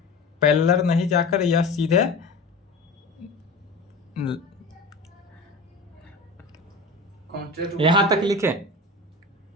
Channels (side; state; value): right; quieter; 3.0 dB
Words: पैरेलल नहीं जाकर यह सीधे यहां तक लिखे।